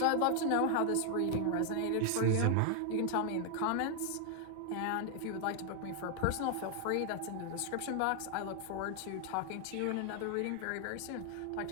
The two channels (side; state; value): both; different; correlation 0.00